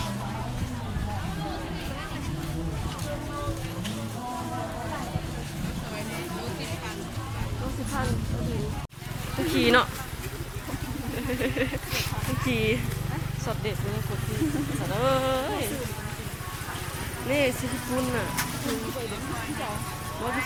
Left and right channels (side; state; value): both; identical; correlation 1.00